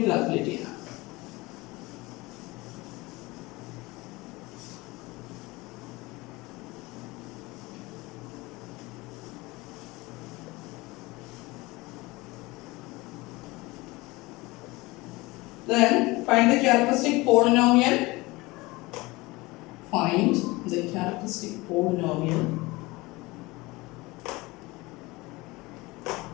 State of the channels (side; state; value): right; quieter; 22.2 dB